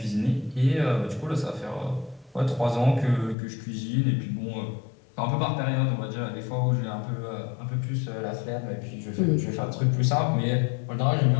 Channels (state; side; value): drops out; right; at 3.4 s